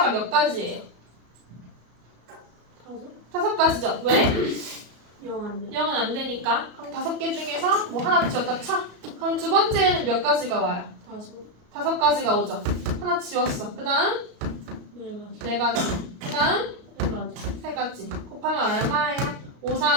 몇 가지예요? 5가지죠. 왜? 0 안 돼. 0은 안 되니까. 그럼 5개 중에서 뭐 하나 지웠다 쳐. 그럼 두 번째는 몇 가지가 와요? 5 5가지가 오죠. 하나 지웠어. 그 다음 4가지 4가지. 그 다음 3가지 3가지. 곱하면 얼마예요? 5,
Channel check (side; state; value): left; late; 33 ms